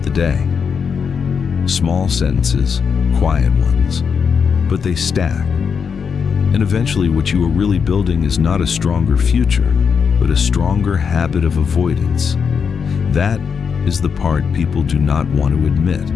the day. Small sentences, quiet ones, but they stack. And eventually what you are really building is not a stronger future, but a stronger habit of avoidance. That is the part people do not want to admit.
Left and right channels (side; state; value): right; quieter; 6.3 dB